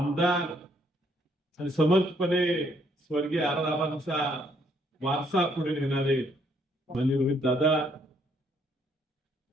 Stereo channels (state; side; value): normal; both; correlation 0.69